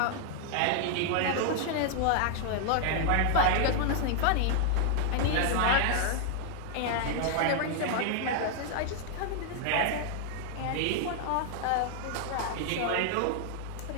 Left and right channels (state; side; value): different; both; correlation 0.00